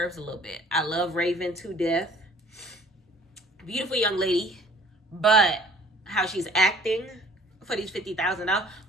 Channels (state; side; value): normal; both; correlation 0.54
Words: a little bit. I love Raven to death. Beautiful young lady. But how she's acting for these $50,000,